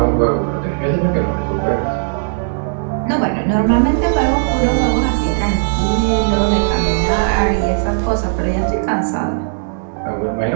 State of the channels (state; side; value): silent; left; digital silence